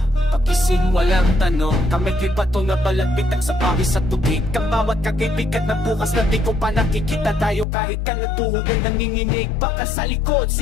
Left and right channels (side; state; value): right; drops out; at 7.7 s